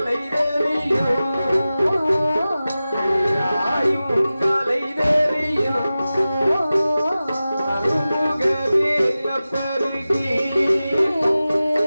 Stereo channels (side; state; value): both; inverted; correlation -0.95